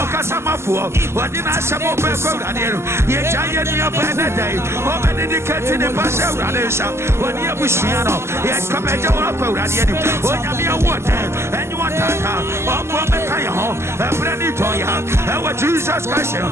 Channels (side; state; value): left; late; 0.13 ms